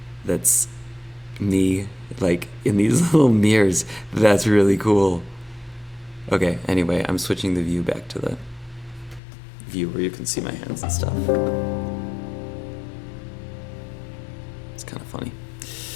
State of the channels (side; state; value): right; drops out; at 9.2 s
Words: that's me, like, in these little mirrors. That's really cool. Okay, anyway, I'm switching the view back to the view where you can see my hands and stuff. It's kind of funny.